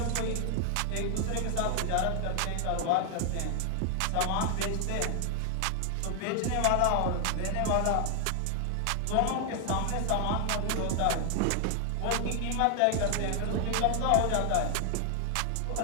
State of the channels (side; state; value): both; different; correlation 0.00